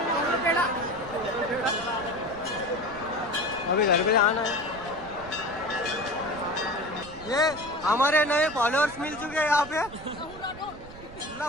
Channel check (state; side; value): noise; right; rumble, 17 dB below the sound